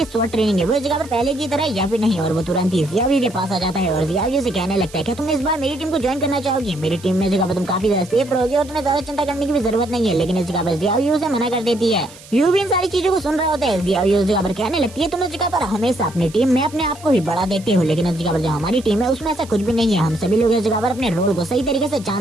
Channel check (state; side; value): noise; right; hiss, 20 dB below the sound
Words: शॉर्ट ट्रेनिंग है वो इस जगह पर पहले की तरह या फिर नहीं। और वो तुरंत ही जियावी के पास आ जाता है और जियावी से कहने लगता है, क्या तुम इस बार मेरी टीम को ज्वाइन करना चाहोगी? मेरी टीम में जगह पर तुम काफी ज्यादा सेफ रहोगे और तुम्हें ज्यादा चिंता करने की भी जरूरत नहीं है। लेकिन इस जगह पर जियावी उसे मना कर देती है। यू भी इन सारी चीजों को सुन रहा होता है। जियावी उस जगह पर कहने लगती है, तुम इस जगह पर हमेशा अपनी टीम में अपने आप को ही बड़ा देखते हो, लेकिन इस जगह पर जो हमारी टीम है उसमें ऐसा कुछ भी नहीं है। हम सभी लोग इस जगह पर अपने रोल को सही तरीके से